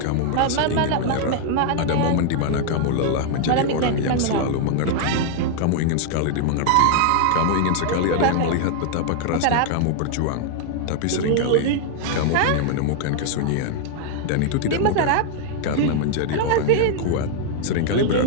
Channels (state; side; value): different; both; correlation 0.00